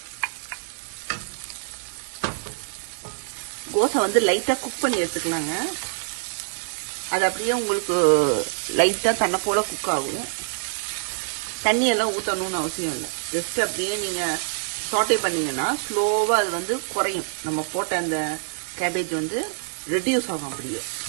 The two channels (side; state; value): left; silent; digital silence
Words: கோஸை வந்து லைட்டாக குக் பண்ணி எடுத்துக்கலாங்க. அது அப்படியே உங்களுக்கு லைட்டாக தன்னை போல குக் ஆகும். தண்ணியெல்லாம் ஊற்றணும்னு அவசியம் இல்லை. ஜஸ்ட் அப்படியே நீங்கள் சாட்டை பண்ணிங்கன்னா ஸ்லோவாக அது வந்து குறையும். நம்ம போட்ட அந்த கேபேஜ் வந்து ரெடியூஸ் ஆகும். அப்படியே